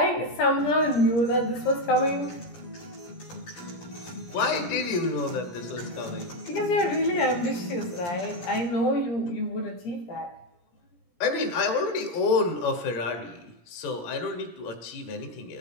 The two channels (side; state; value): right; late; 17 ms